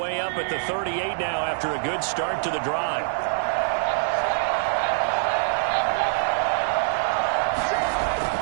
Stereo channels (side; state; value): left; silent; digital silence